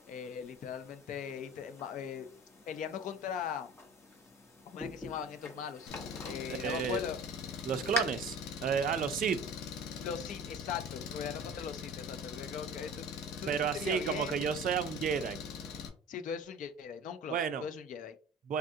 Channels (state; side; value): normal; both; correlation 0.40